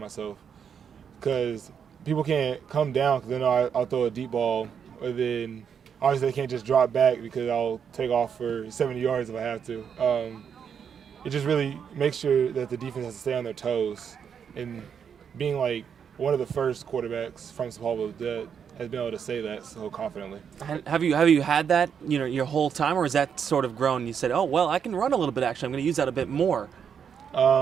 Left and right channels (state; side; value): quieter; left; 7.4 dB